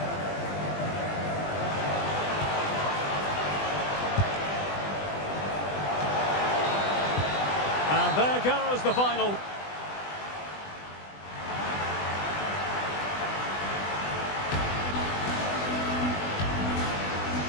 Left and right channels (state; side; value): late; right; 20 ms